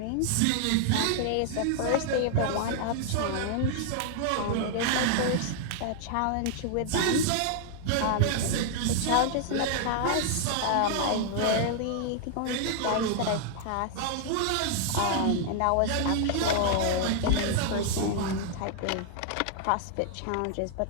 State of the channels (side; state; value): both; different; correlation -0.01